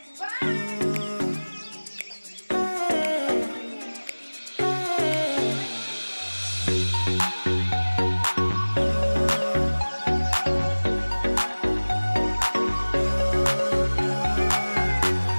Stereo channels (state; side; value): inverted; both; correlation -1.00